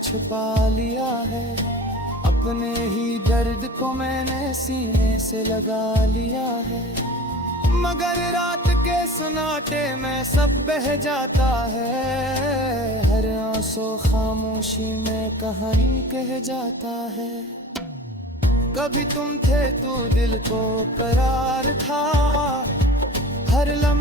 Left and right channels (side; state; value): both; normal; correlation 0.39